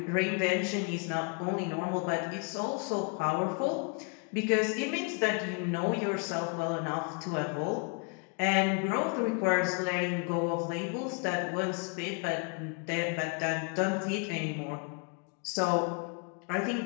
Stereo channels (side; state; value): right; quieter; 35.1 dB